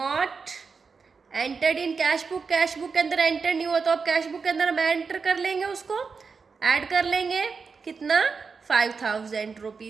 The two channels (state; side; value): quieter; left; 5.1 dB